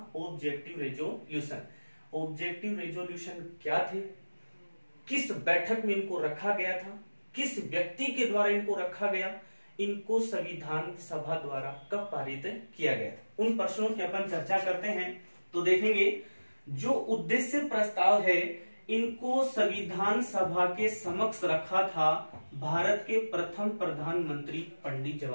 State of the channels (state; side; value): inverted; both; correlation -1.00